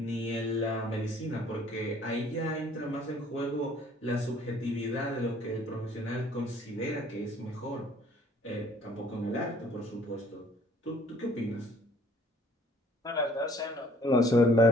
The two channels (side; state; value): both; normal; correlation 0.57